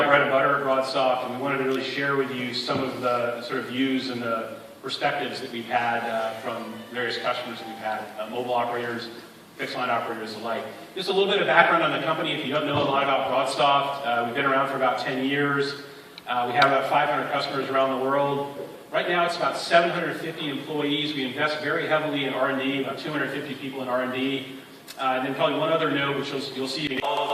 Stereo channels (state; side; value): identical; both; correlation 1.00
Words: bread and butter at BroadSoft, and we wanted to really share with you some of the sort of views and the perspectives that we've had from various customers that we've had, mobile operators, fixed line operators alike. Just a little bit of background on the company. If you don't know a lot about BroadSoft, we've been around for about 10 years. We have about 500 customers around the world. Right now it's about 750 employees. We invest very heavily in R&D, about 250 people in R&D. And then probably one other note, which you'll see a